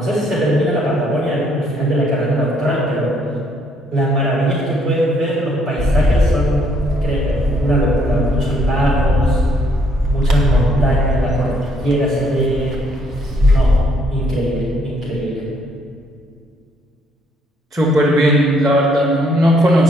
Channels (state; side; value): normal; both; correlation 0.68